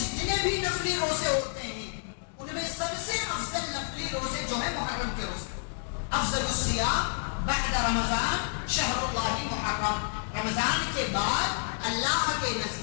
بھی نفلی روزے ہوتے ہیں ان میں سب سے افضل نفلی روزے جو ہے محرم کے روزے. افضل الصیام بعد رمضان شہر اللہ محرم, رمضان کے بعد اللہ کے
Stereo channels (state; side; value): silent; right; digital silence